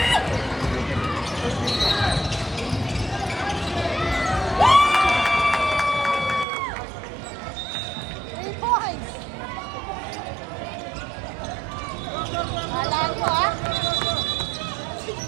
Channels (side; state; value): left; drops out; at 6.5 s